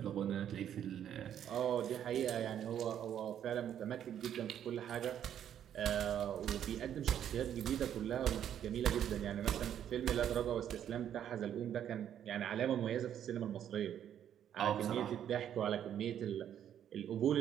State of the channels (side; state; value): left; quieter; 9.9 dB